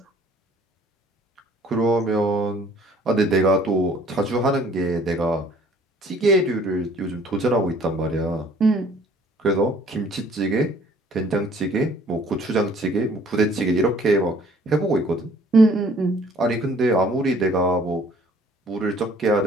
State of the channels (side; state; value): both; normal; correlation 0.57